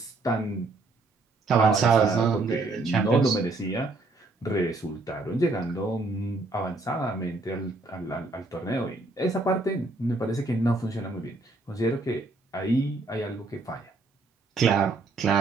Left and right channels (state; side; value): quieter; left; 3.3 dB